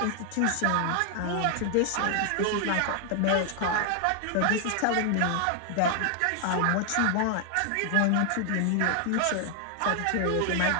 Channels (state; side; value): different; both; correlation 0.00